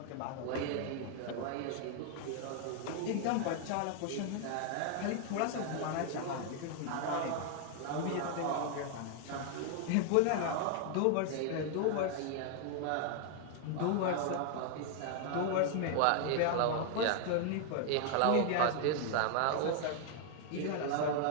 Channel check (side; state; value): both; different; correlation 0.00